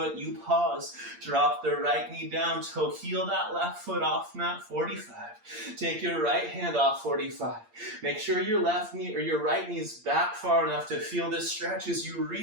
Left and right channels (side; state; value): left; late; 8.6 ms